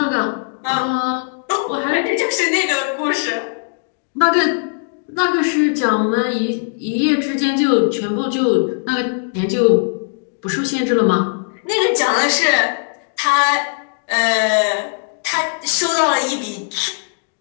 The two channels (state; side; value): silent; right; digital silence